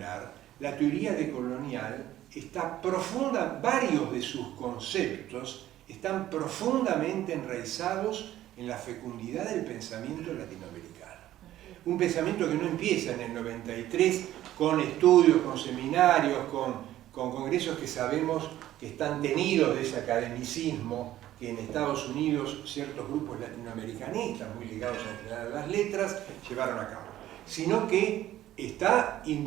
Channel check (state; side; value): quieter; left; 13.5 dB